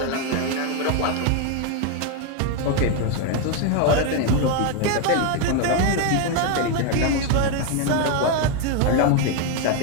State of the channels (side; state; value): both; different; correlation 0.01